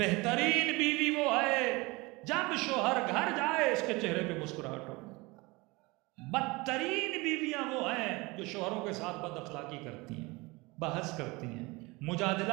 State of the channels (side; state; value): left; quieter; 24.0 dB